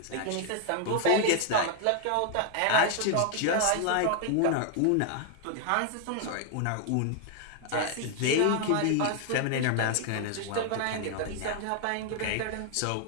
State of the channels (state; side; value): different; both; correlation 0.00